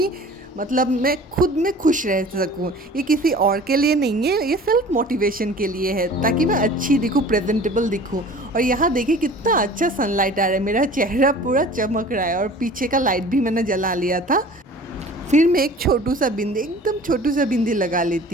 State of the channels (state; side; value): normal; both; correlation 0.44